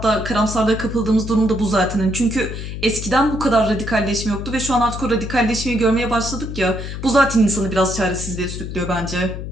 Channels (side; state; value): left; noise; hum, 7 dB below the sound